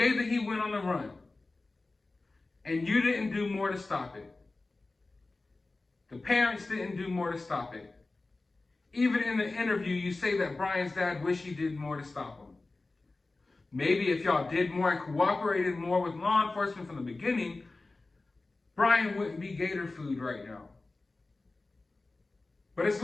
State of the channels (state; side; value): quieter; right; 3.3 dB